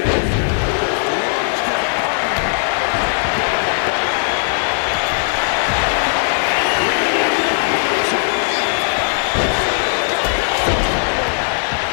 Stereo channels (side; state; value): right; silent; 68 dB below the other